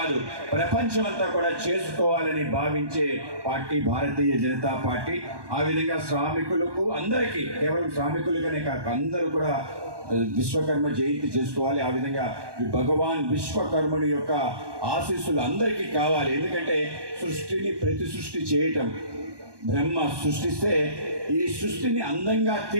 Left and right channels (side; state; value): left; late; 1.2 ms